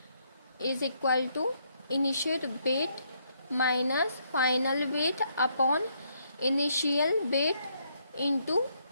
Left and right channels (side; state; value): both; inverted; correlation -0.72